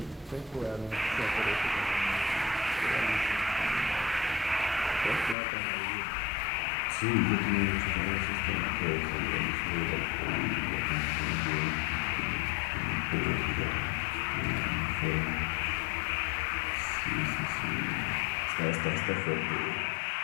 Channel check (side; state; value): right; drops out; at 5.4 s